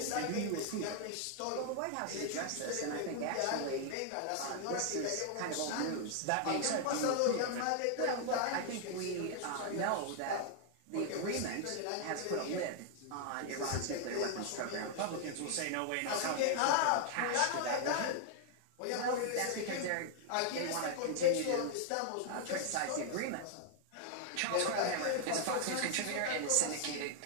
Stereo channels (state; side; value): different; both; correlation 0.00